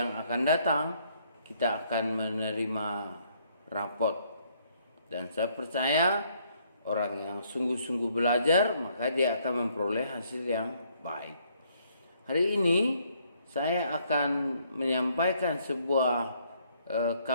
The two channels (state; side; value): inverted; both; correlation -0.68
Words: akan datang kita akan menerima rapot. Dan saya percaya orang yang sungguh-sungguh belajar, maka dia akan memperoleh hasil yang baik. Hari ini saya akan menyampaikan sebuah